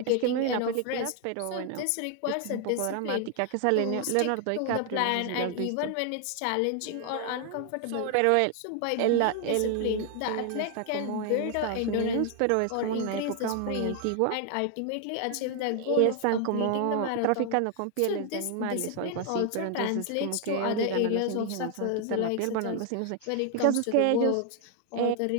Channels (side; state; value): both; different; correlation 0.00